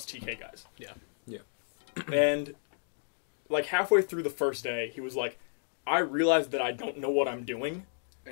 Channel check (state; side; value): silent; right; digital silence